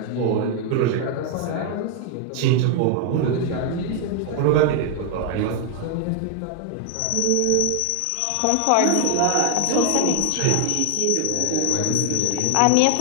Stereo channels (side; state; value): both; different; correlation 0.00